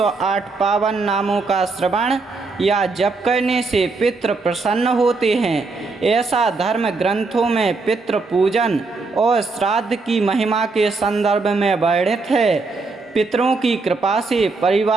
पावन नामों का श्रवण या जप करने से पितृ प्रसन्न होते हैं। ऐसा धर्म ग्रंथों में पितृ पूजन और श्राद्ध की महिमा के संदर्भ में वर्णित है। पितरों की कृपा से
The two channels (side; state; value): left; quieter; 3.9 dB